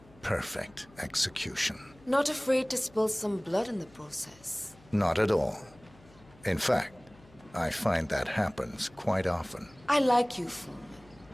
perfect execution. Not afraid to spill some blood in the process? Not at all. In fact, I find that happens quite often. I like you, Foreman.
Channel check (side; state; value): left; noise; hum, 26 dB below the sound